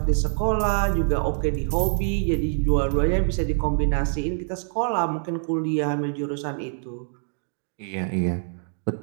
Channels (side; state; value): left; silent; 62 dB below the other